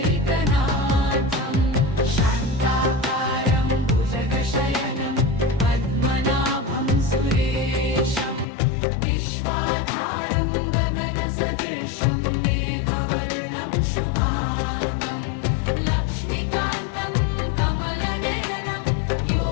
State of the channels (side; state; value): right; drops out; at 8.5 s